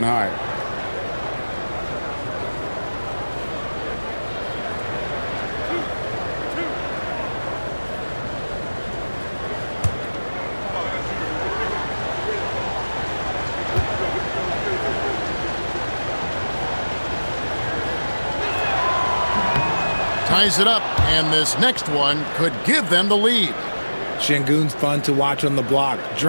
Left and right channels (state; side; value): inverted; both; correlation -1.00